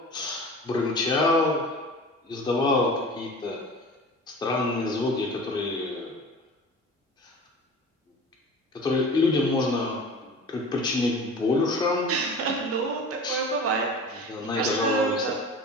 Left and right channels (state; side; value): normal; both; correlation 0.38